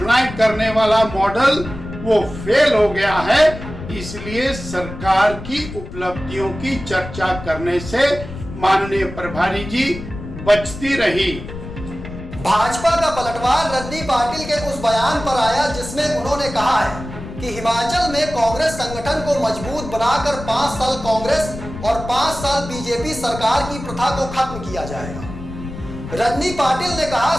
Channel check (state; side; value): noise; left; rumble, 11 dB below the sound